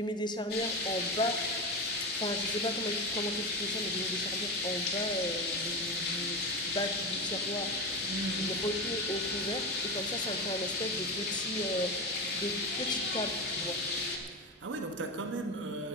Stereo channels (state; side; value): normal; both; correlation 0.20